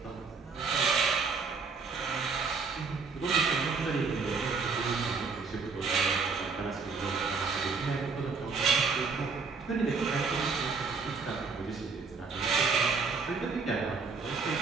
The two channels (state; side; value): quieter; left; 4.8 dB